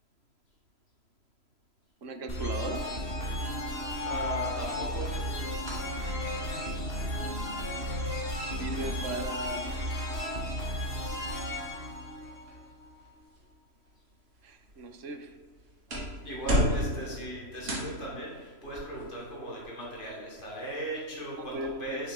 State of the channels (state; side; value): late; left; 3.0 ms